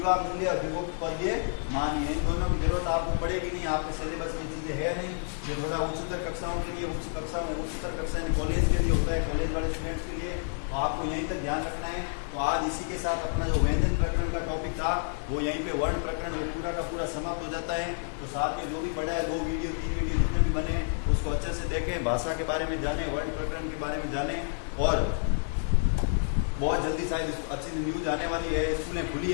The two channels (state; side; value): silent; right; digital silence